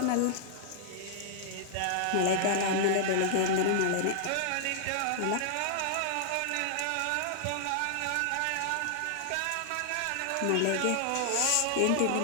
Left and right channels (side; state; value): both; different; correlation -0.01